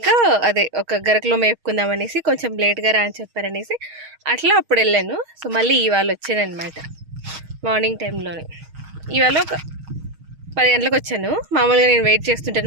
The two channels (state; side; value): late; left; 6.4 ms